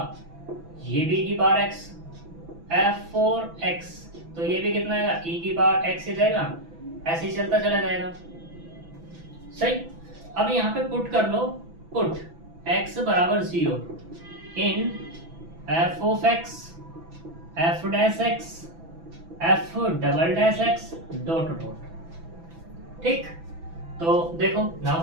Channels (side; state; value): left; late; 6.0 ms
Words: ये भी की power x, F four x, तो ये भी कितना आएगा, ई की पावर एक्स ही जाएगा, ऐसे ही चलता चला जाएगा। सही, अब यहाँ पे पुट कर लो, पुट x बराबर 0 in F of x, F dash x, F double dash x dot dot. ठीक, तो देखो